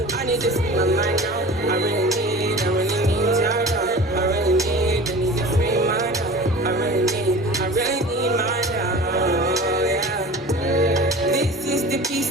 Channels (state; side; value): normal; both; correlation 0.39